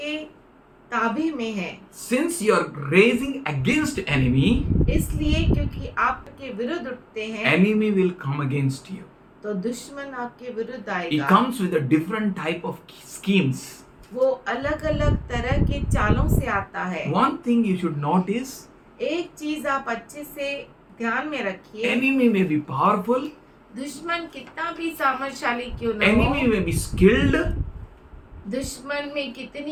ताबे में हैं। Since you are raising against enemy, इसलिए क्योंकि आपके विरुद्ध उठते हैं, enemy will come against you. तो दुश्मन आपके विरुद्ध He आएगा। comes with a different type of schemes. वो अलग अलग तरह के चालों से आता है। One thing you should notice, एक चीज आप अच्छे से ध्यान में रखिए, enemy may be powerful, दुश्मन कितना भी सामर्थशाली क्यों न enemy हो, may be skilled, दुश्मन में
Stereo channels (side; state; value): both; identical; correlation 1.00